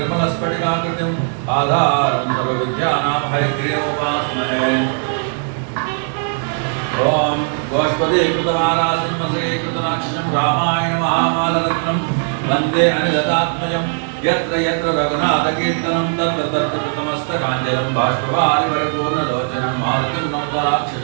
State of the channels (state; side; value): silent; left; 56 dB below the other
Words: आधारं सर्वविद्यानां हयग्रीवोपास्महे। ॐ गोष्पदीकृतमालासिंहसीकृतनाक्षं रामायण महामालरत्नं वन्दे अनिलतात्मजं यत्र यत्र रघुनाथकीर्तनं तत्र तत्र कृतमस्तकाञ्जलं बाष्पवारि परिपूर्णलोचनं मारुतिं नमत